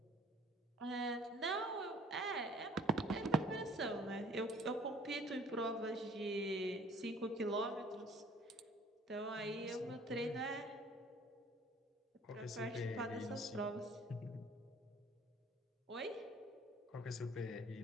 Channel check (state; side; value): normal; both; correlation 0.53